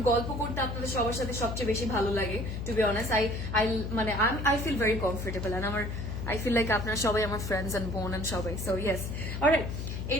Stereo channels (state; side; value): noise; left; hum, 5 dB below the sound